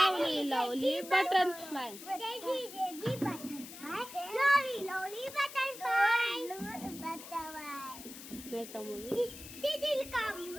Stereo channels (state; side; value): noise; left; hiss, 14 dB below the sound